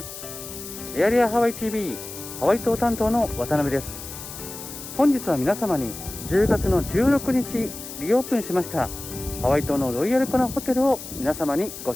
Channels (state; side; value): noise; left; hiss, 11 dB below the sound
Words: エアリアハワイ TV ハワイ島担当の渡辺です。本日は皆様に10月の16日リオープンしましたハワイ島のロイヤルコナホテルを皆様にご